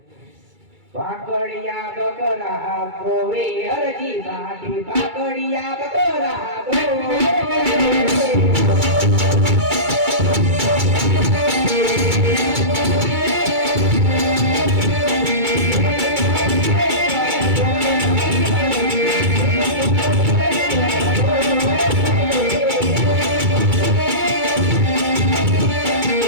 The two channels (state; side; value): late; left; 2.3 ms